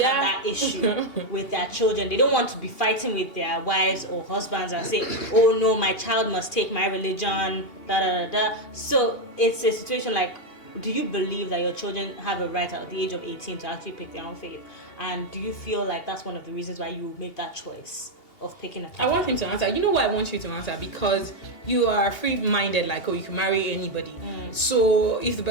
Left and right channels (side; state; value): right; late; 2.8 ms